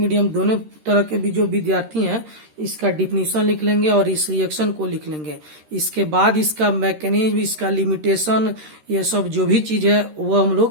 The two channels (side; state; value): left; late; 13 ms